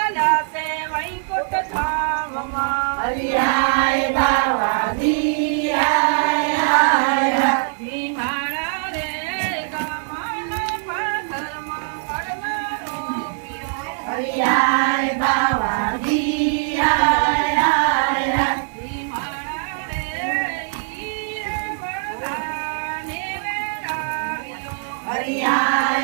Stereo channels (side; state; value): left; silent; digital silence